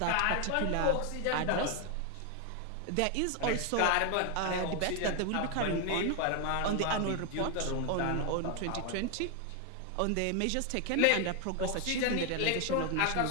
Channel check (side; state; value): both; different; correlation 0.01